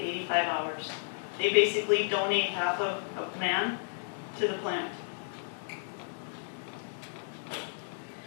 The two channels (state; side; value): silent; right; digital silence